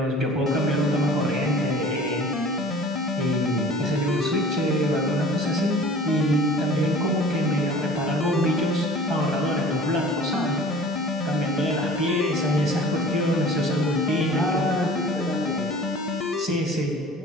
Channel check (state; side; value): normal; both; correlation 0.45